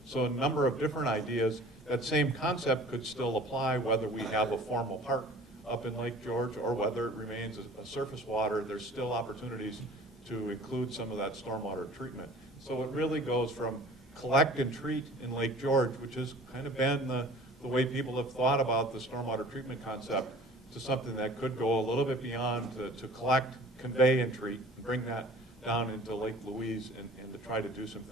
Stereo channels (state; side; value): normal; both; correlation 0.45